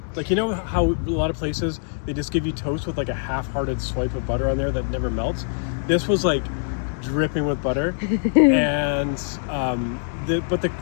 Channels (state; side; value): silent; right; 63 dB below the other